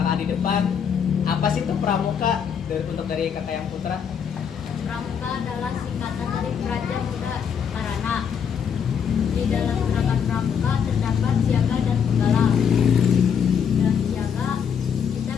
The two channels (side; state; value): right; quieter; 7.4 dB